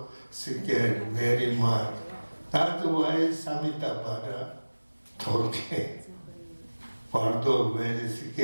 scared very much. That's why Samitabhadra told him. Pardo very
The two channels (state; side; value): inverted; both; correlation -1.00